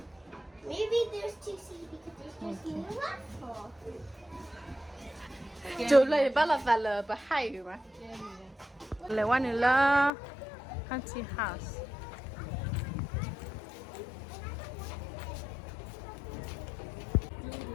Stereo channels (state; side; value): drops out; right; at 10.1 s